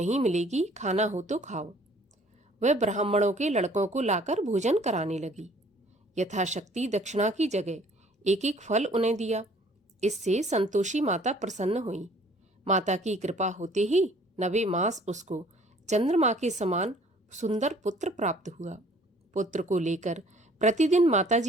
मिलेगी, खाना हो तो खाओ। वह ब्राह्मणों के लड़कों को लाकर भोजन कराने लगी। यथाशक्ति दक्षिणा की जगह एक एक फल उन्हें दिया। इससे संतोषी माता प्रसन्न हुई। माता की कृपा होते ही 9वें मास उसको चंद्रमा के समान सुंदर पुत्र प्राप्त हुआ। पुत्र को लेकर प्रतिदिन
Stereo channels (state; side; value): normal; both; correlation 0.56